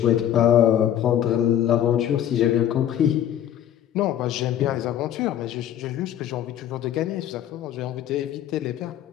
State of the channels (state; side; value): quieter; right; 10.9 dB